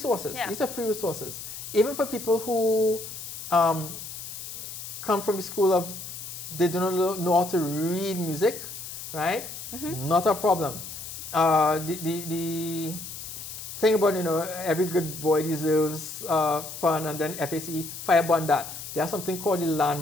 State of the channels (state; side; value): noise; left; hiss, 10 dB below the sound